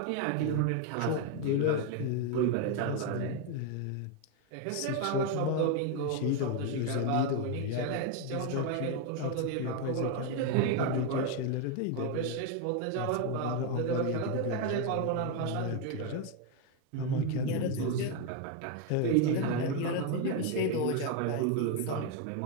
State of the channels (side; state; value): both; different; correlation 0.01